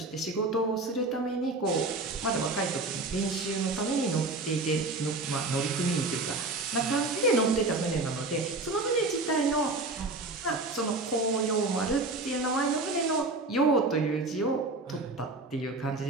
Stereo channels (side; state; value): left; quieter; 3.2 dB